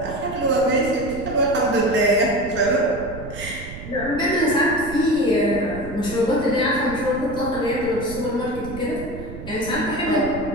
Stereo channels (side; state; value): right; noise; rumble, 11 dB below the sound